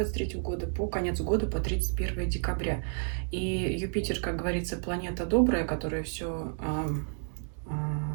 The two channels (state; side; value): silent; left; 57 dB below the other